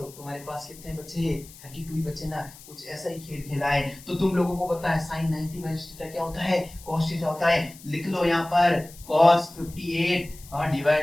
तुम्हारे पास कितने बचे? 32 ही बचे ना। कुछ ऐसा ही खेल खेला है। तो तुम लोगों को पता है साइन 90 माइनस थीटा क्या होता है? cos थीटा होता है। लिख लो यहाँ पर cos 58 और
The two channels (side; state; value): left; noise; hiss, 20 dB below the sound